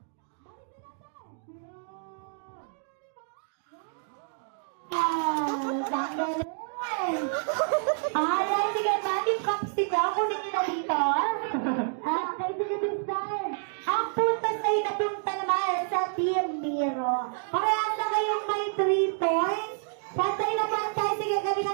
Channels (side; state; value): left; silent; digital silence